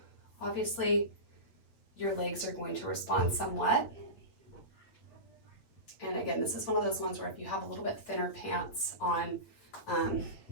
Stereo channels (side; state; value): right; late; 8.6 ms